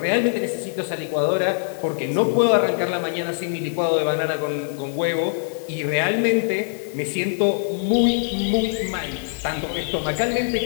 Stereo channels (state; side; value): silent; right; digital silence